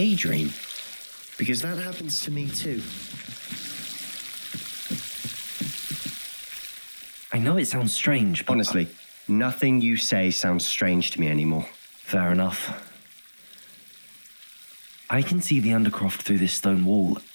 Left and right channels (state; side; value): inverted; both; correlation -1.00